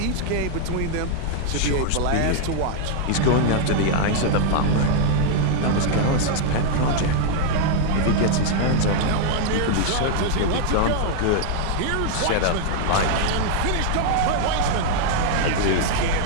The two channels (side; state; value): both; different; correlation 0.00